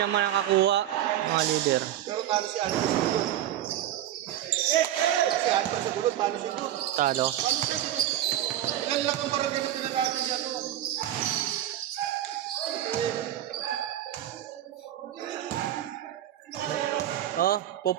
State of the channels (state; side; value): quieter; left; 12.2 dB